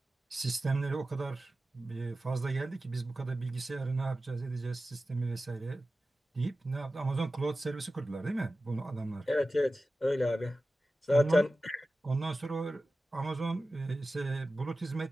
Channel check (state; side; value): normal; both; correlation 0.94